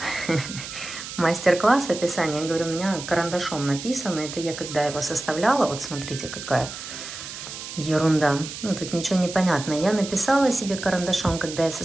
мастер-класс описание, я говорю, у меня карандашом написано. Это я когда его составляла, вот смотрите, какая ерунда. Ну, тут ничего не понятно. Я написала себе карандашом, когда я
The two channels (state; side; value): noise; right; hiss, 10 dB below the sound